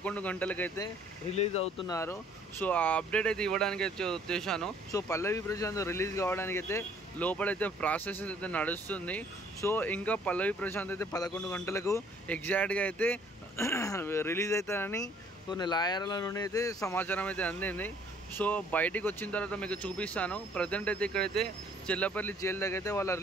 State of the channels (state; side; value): normal; both; correlation 0.59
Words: గంటలకైతే రిలీజ్ అవుతున్నారు. సో ఆ అప్డేట్ అయితే ఇవ్వడానికి అయితే వచ్చేసాను. సో పల్లవి ప్రశాంత్ రిలీజ్ కావడానికి అయితే లోపలైతే ప్రాసెస్ అయితే నడుస్తుంది. సో ఇంకా పల్లవి ప్రశాంత్ అయితే 11 గంటలకు ఎగ్జాక్ట్గా అయితే రిలీజ్ అవుతారని కొన్ని లాయర్ల నుండి అయితే సమాచారం అయితే అందింది. సో బయటికి వచ్చిన తర్వాత మీకు చూపిస్తాను. ప్రజెంట్ అయితే ఇక్కడైతే చెల్లపల్లి జైలు దగ్గర అయితే వాళ్ళ